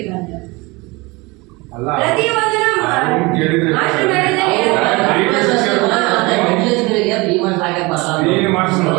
ಅಂತ. ಅಲ್ಲ ಪ್ರತಿಯೊಂದನ್ನು ಕೇಳಿದ್ರೆ ಮಾಸ್ಟರ್ ಮಾಡಿದ್ರೆ ನೀನು ಮಾಡಿಸ್ನು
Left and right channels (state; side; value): quieter; left; 24.7 dB